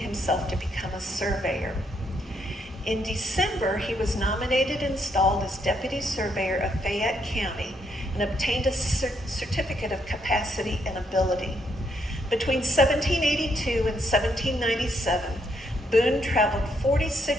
to become a surveyor. In December, he was nominated and installed as deputy surveyor of Fayette County and obtained a certificate of capacity and ability. Between 1782 and 1797, Boone traveled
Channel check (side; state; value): both; normal; correlation 0.75